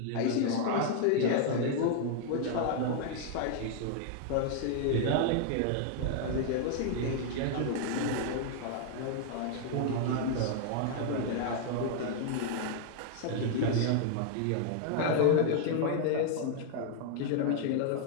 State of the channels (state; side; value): different; both; correlation 0.00